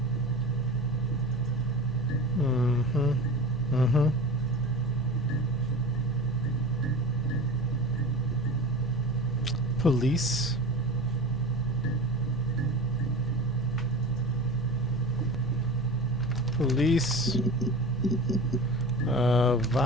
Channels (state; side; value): normal; both; correlation 0.32